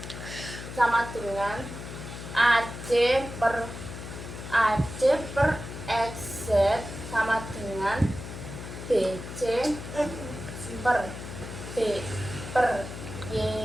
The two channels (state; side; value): noise; left; hum, 10 dB below the sound